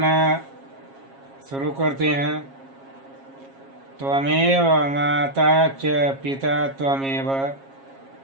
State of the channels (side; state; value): left; late; 7.4 ms